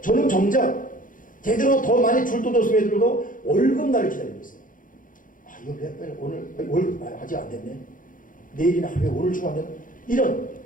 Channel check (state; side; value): late; right; 0.39 ms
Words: 저는 정작 제대로 더 많이 줄 돈도 없음에도 월급 날을 기다리고 있어요. 이거 왜 빨리 오늘 월급 아직 안 됐네. 내일이나 하루에 오늘 주고 안 되나? 이런